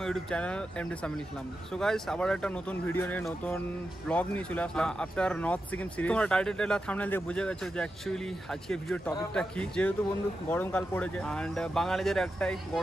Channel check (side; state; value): both; normal; correlation 0.89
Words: YouTube channel MD Samil Islam. So guys, আবার একটা নতুন ভিডিও নিয়ে নতুন ব্লগ নিয়ে চলে আসলাম আফটার নর্থ সিকিম সিরিজ। তোমরা টাইটেল আর থাম্বনেল দেখে বুঝে গেছো যে অ্যাকচুয়ালি আজকে ভিডিওর টপিকটা কি। যেহেতু বন্ধু গরমকাল পড়েছে এন্ড বাঙালিদের একটাই